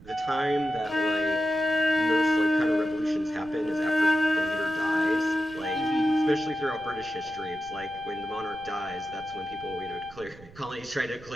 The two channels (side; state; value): right; noise; rumble, 20 dB below the sound